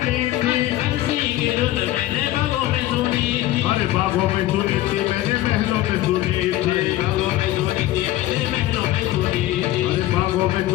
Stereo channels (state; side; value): quieter; right; 15.1 dB